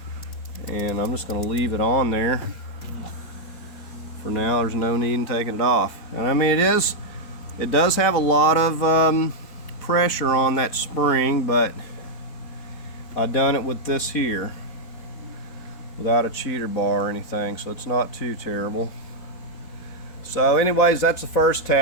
and I'm just gonna leave it on there for now. There's no need in taking it off. And I mean, it does have a lot of pressure on that spring, but I done it with this here without a cheater bar or anything, so it's not too terrible. So anyways, that's the first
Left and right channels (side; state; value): right; late; 4.1 ms